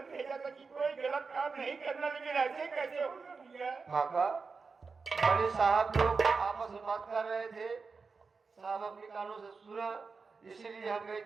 भेजा था कि कोई गलत काम नहीं करना, लेकिन ऐसे कैसे होगा भैया? काका बड़े साहब लोग आपस में बात कर रहे थे, साहब अपने कानों से सुना, इसीलिए हम गए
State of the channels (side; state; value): left; quieter; 4.7 dB